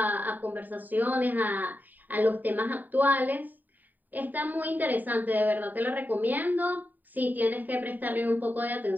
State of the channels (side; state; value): left; late; 0.087 ms